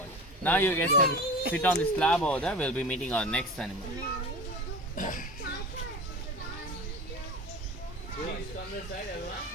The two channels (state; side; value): normal; both; correlation 0.33